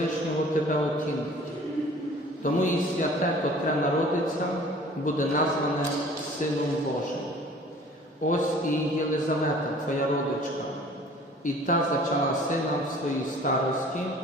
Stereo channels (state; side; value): normal; both; correlation 0.49